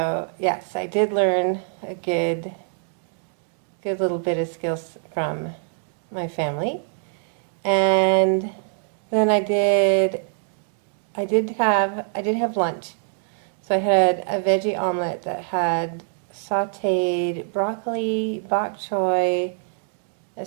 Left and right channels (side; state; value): left; silent; digital silence